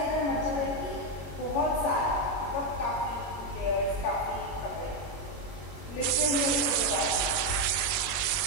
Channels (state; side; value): late; right; 21 ms